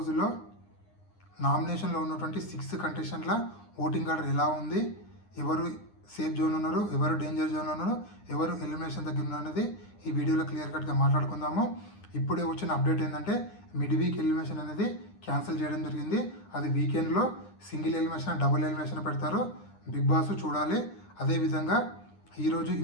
నామినేషన్లో ఉన్నటువంటి 6 కంటెస్టెంట్ల ఓటింగ్ ఆర్డర్ ఎలా ఉంది, ఎవరు సేఫ్ జోన్ ఉన్నారు, ఎవరు డేంజర్ జోన్ ఉన్నారు, ఎవరు ఎలిమినేషన్ దగ్గర ఉన్నారు అనేది ఈ వీడియోలో క్లియర్ కట్గా మాట్లాడుకుందాము. ఇప్పుడే వచ్చిన అప్డేట్ ఏంటంటే మిడ్ వీక్ ఎలిమినేషన్ అనేది క్యాన్సిల్ చేయడం జరిగింది. అది వీకెండ్లో సింగిల్ ఎలిమినేషన్, డబుల్ ఎలిమినేషన్ పెడతారు. బిగ్ బాస్ చూడాలి. అదేవిధంగా ఈరోజు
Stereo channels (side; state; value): right; late; 9.8 ms